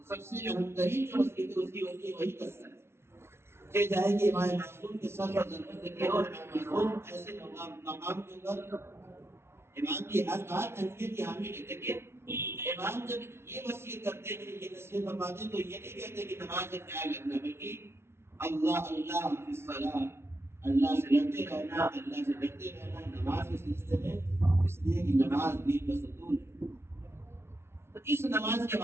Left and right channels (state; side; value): late; left; 0.12 ms